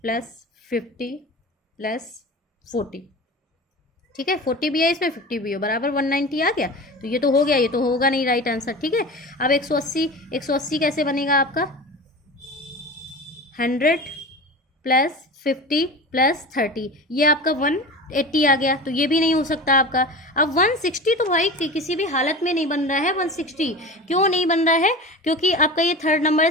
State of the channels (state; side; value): normal; both; correlation 0.32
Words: + 50 + 40, ठीक है। 40 भी है इसमें, 50 भी हो, बराबर 190 आ गया। तो ये तो हो गया, ये तो होगा नहीं राइट आंसर, ठीक है। अब 180 कैसे बनेगा आपका, 100 + 50 + 30, ये आपका 180 आ गया। तो ये भी नहीं हो सकता आपका। अब 160 तो भाई किसी भी हालत में नहीं बन रहा है। 160 क्यों नहीं बन रहा है, क्योंकि आपका ये थर्ड नंबर